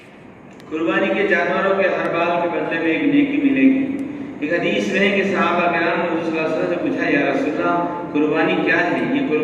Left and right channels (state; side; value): identical; both; correlation 1.00